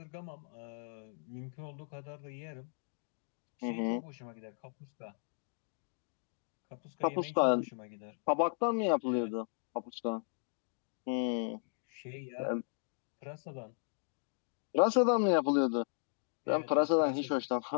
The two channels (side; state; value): right; silent; digital silence